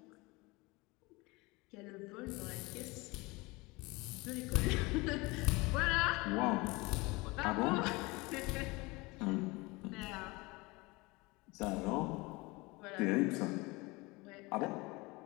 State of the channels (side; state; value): right; quieter; 24.2 dB